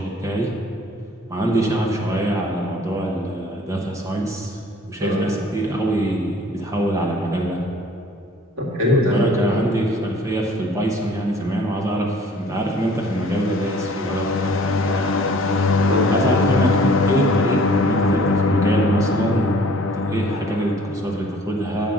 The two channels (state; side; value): normal; both; correlation 0.53